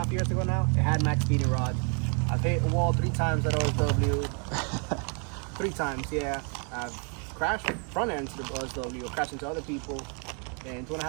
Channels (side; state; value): left; quieter; 39.6 dB